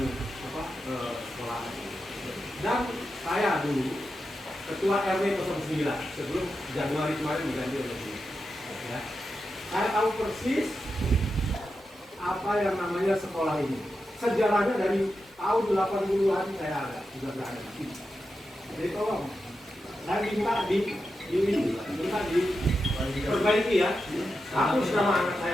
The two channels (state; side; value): normal; both; correlation 0.89